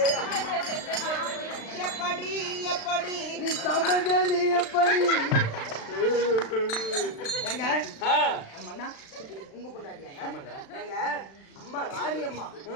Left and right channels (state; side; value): late; right; 36 ms